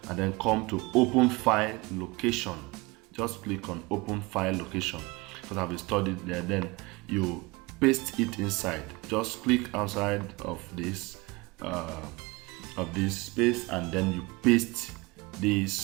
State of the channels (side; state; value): left; quieter; 24.3 dB